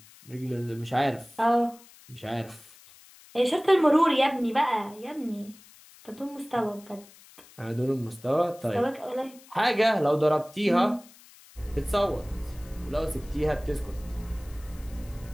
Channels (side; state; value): left; noise; hiss, 23 dB below the sound